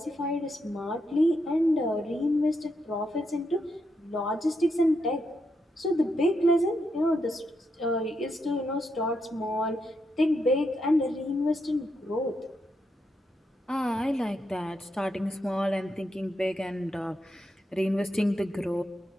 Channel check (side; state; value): both; normal; correlation 0.82